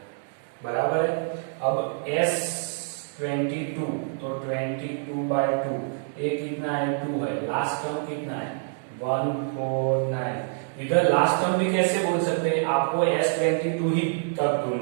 बराबर है। अब s22 तो 22/2, a कितना है 2 है, लास्ट टर्म कितना है 149, इधर लास्ट टर्म भी कैसे बोल सकते हैं, आपको S22 ही तब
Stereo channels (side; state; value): left; silent; digital silence